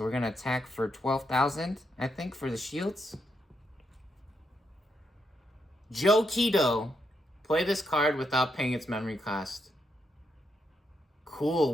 we're gonna attack for 12,000, I think, for the shields. Joe Keto. Play this card without paying its memory cost. Cool,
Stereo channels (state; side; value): normal; both; correlation 0.80